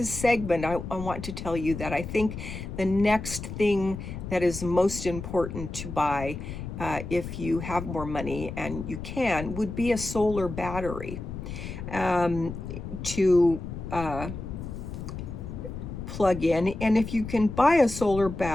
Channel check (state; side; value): noise; left; rumble, 8 dB below the sound